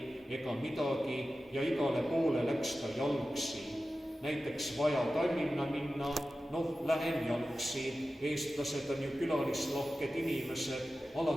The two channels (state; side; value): normal; both; correlation 0.94